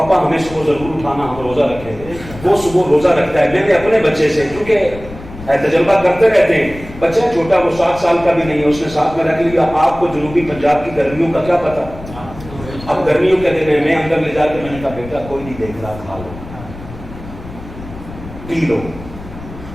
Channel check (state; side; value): noise; left; rumble, 15 dB below the sound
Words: ہمیں صبح ضرور اٹھانا، ہم روزہ رکھیں گے۔ وہ صبح روزہ رکھتا ہے۔ میں نے اپنے بچے سے، کیونکہ تجربہ کرتے رہتے ہیں، بچہ چھوٹا وہ 7 سال کا بھی نہیں ہے، اس نے ساتھ میں رکھ لیا۔ آپ کو جنوبی پنجاب کی گرمیوں کا کیا پتا، اب گرمیوں کے دن ہے، میں اندر لے جا کے میں نے کہا بیٹا کوئی نہیں دیکھ رہا، کھا لو پی لو۔